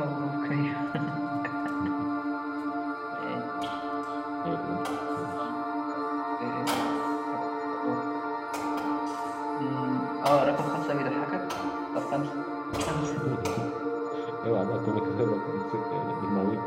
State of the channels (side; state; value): both; identical; correlation 1.00